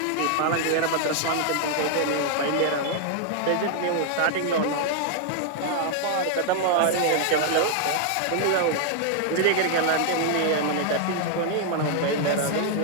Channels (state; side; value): different; both; correlation 0.00